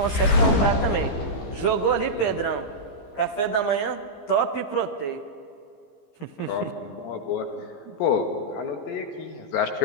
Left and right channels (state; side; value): late; right; 15 ms